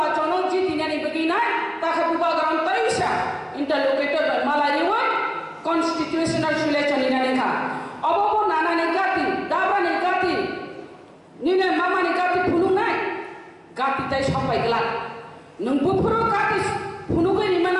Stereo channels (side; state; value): both; identical; correlation 1.00